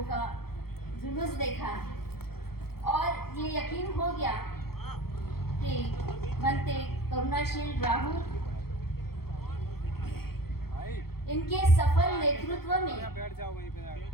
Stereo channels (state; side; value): late; right; 0.95 ms